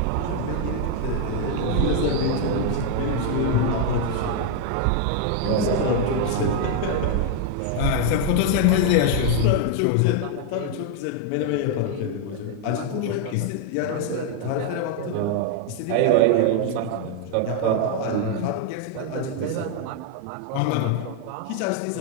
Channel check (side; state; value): both; different; correlation 0.00